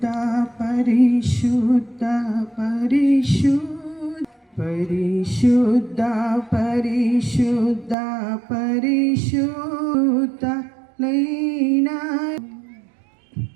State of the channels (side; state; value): left; drops out; at 8.0 s